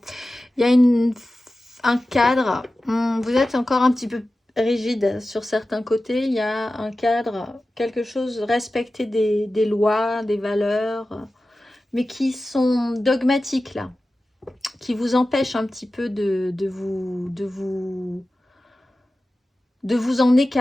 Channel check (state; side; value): normal; both; correlation 0.95